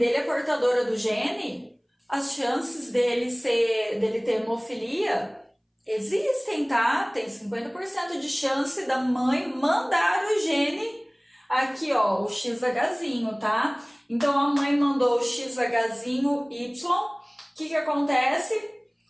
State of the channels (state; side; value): identical; both; correlation 1.00